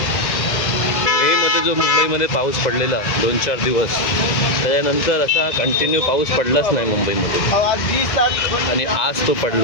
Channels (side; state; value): right; late; 2.0 ms